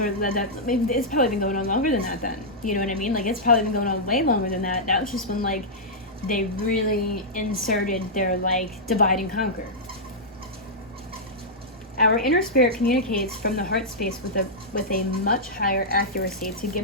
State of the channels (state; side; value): normal; both; correlation -0.10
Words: maybe it's probably been going on longer than that. Then you know what I mean? Like it's probably been going on way longer than that. That was just when like they really inserted their like divide and conquer. Our inner spirit communicates from the heart space with a much higher accuracy to